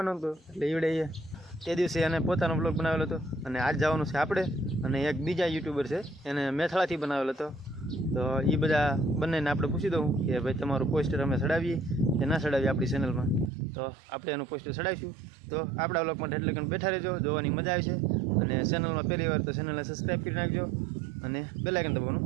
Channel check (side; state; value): left; drops out; at 13.5 s